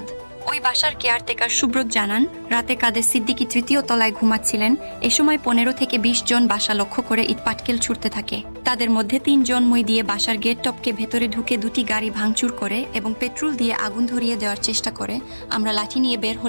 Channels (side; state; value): both; inverted; correlation -1.00